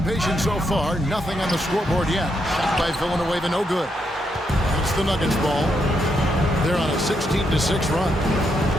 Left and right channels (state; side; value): normal; both; correlation 0.79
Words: patient so far. Nothing on the scoreboard yet. Shot by Villanueva, no good. It's the Nuggets ball. They're on a 16-6 run.